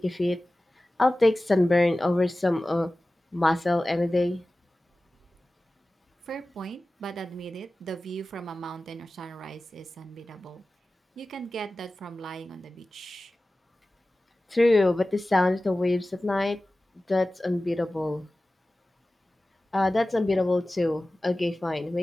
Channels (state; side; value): normal; both; correlation 0.96